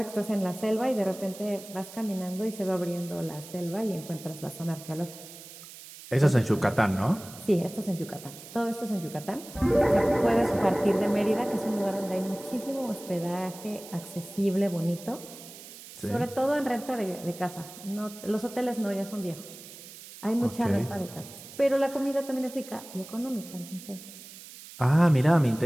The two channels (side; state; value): right; noise; hiss, 16 dB below the sound